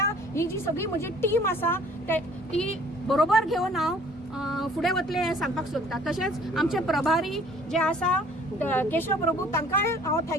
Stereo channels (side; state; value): both; normal; correlation 0.55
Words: जी सगळी म्हजी टीम आसा ती बरोबर घेवन हांव फुडें वतलें हें सांगपाक सोदता. तशेंच आमचे प्रभारी जे आसा केशव प्रभू तांकांय हांव